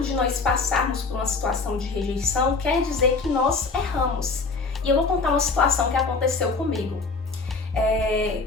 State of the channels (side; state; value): right; quieter; 4.1 dB